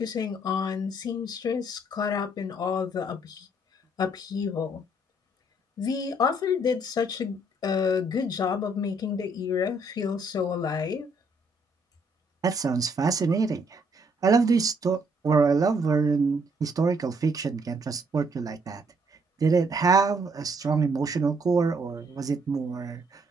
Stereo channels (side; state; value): both; normal; correlation 0.68